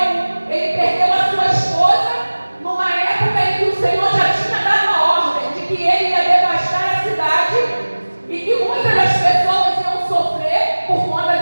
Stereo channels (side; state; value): both; inverted; correlation -1.00